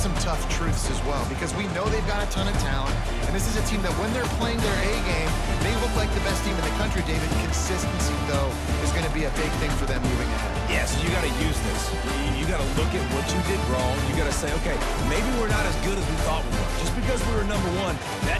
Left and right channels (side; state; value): both; identical; correlation 1.00